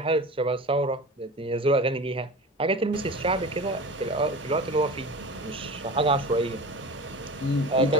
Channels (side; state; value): both; normal; correlation 0.34